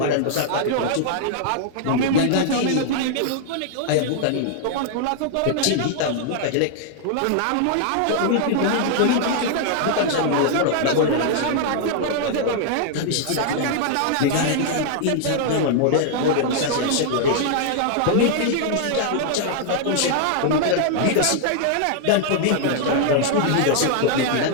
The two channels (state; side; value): different; both; correlation 0.00